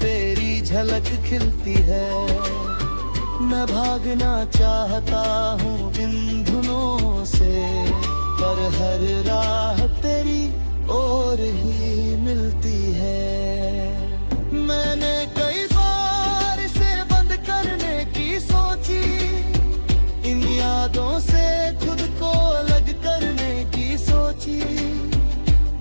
झलक खिलती है। मैं भागना चाहता हूँ इन धुनों से, पर हर राह तेरी ओर ही मिलती है। मैंने कई बार इसे बंद करने की सोची, इन यादों से खुद को अलग करने की सोची,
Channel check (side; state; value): both; inverted; correlation -1.00